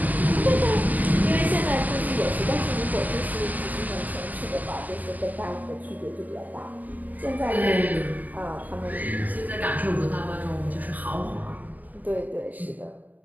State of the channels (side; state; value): left; late; 0.080 ms